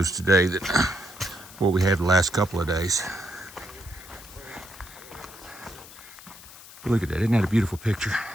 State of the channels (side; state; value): left; noise; hiss, 18 dB below the sound